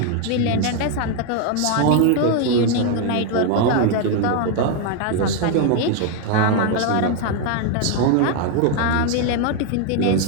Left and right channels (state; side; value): different; both; correlation 0.01